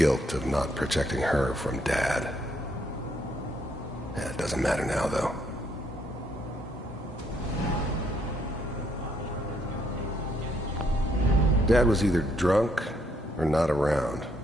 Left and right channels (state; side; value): normal; both; correlation 0.72